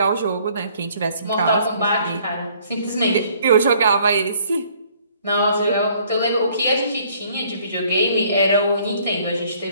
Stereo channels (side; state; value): both; inverted; correlation -0.60